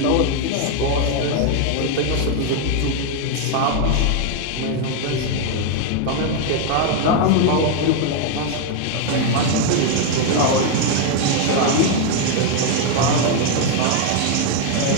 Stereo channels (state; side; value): different; both; correlation 0.01